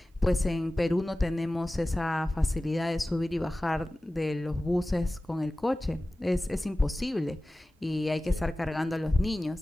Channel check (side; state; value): both; normal; correlation 0.96